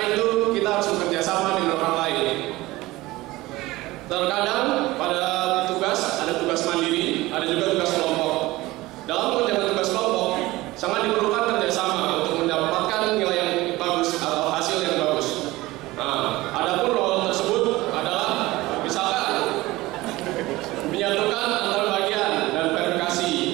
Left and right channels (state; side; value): quieter; left; 19.1 dB